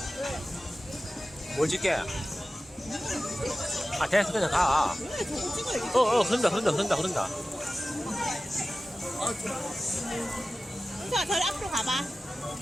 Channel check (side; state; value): both; normal; correlation 0.95